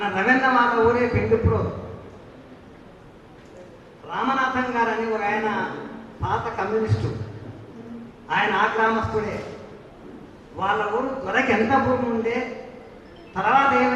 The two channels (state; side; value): identical; both; correlation 1.00